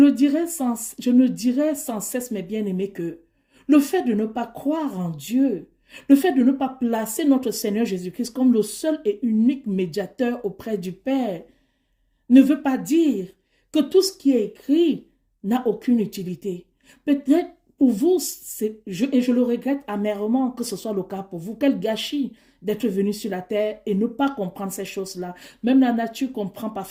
dirai sans cesse, mes bien-aimés, que le fait de ne pas croire en Dieu, le fait de ne pas placer notre Seigneur Jésus-Christ comme le seul et unique médiateur auprès du Père, ne veut pas dire que tout ce qui est écrit n'a aucune utilité. Peut-être pour vous, et je le regrette amèrement que ce soit le cas pour vous, quel gâchis d'être venu sur la terre et ne pas comprendre ces choses-là. Même la nature comprend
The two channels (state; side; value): identical; both; correlation 1.00